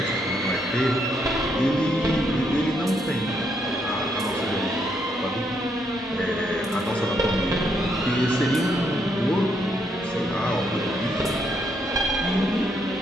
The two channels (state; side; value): normal; both; correlation 0.75